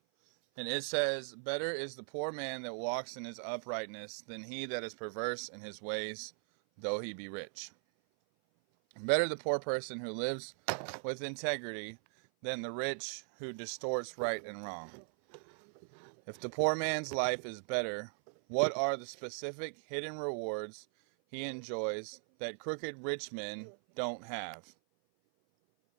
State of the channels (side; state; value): left; silent; 52 dB below the other